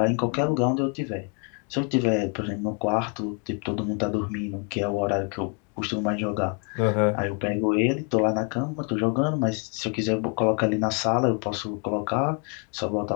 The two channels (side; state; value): right; quieter; 37.5 dB